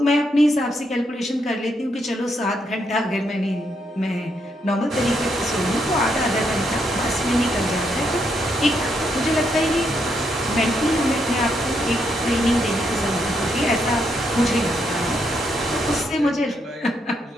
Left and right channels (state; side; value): normal; both; correlation 0.77